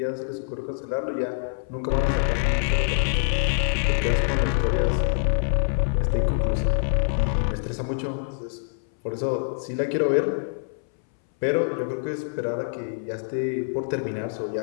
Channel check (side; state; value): right; silent; 62 dB below the other